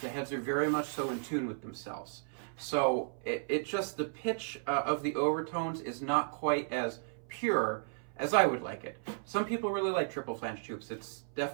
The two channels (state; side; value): silent; left; 55 dB below the other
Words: heads are very much so in tune with themselves. So it just, the pitch of the overtones is not quite as pure as I would like it. Some people really like triple flange tubes. It's